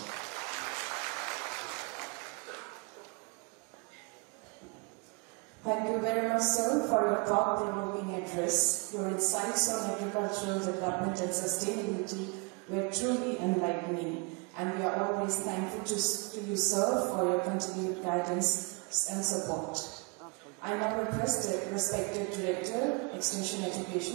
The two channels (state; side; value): quieter; left; 32.0 dB